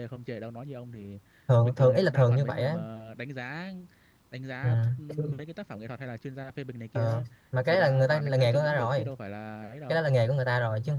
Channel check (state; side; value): identical; both; correlation 1.00